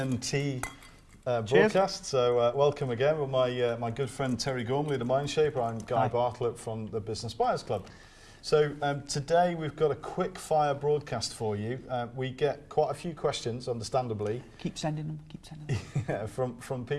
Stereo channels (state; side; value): identical; both; correlation 1.00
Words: broadcast. So welcome again with my good friend Terry Gormley, the Mindshaper. I'm Guy Bartlett from the Business Buyers Club. So today we've got a quick fire broadcast for you. We get quite a few questions, understandably. Keep sending them, yeah, from